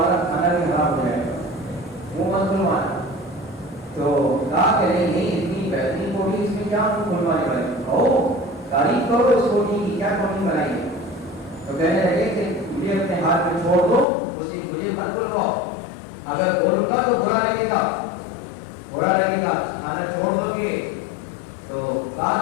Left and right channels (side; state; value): right; drops out; at 14.1 s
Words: کھانا بھی خراب ہو جائے گا، منہ مت کھلوانا۔ تو کہا کہ نہیں اتنی بہترین کوٹھی، اس میں کیا منہ کھلوانے والے، تعریف کرو اس کوٹھی کی، کیا کوٹھی بنائی ہے۔ تو کہنے لگے کہ مجھے اپنے ہاتھ میں چھوڑ دو، مجھے مت بلواؤ، اگر بولوں گا تو برا لگے گا، کھانا چھوڑ دو گے۔ تو کہا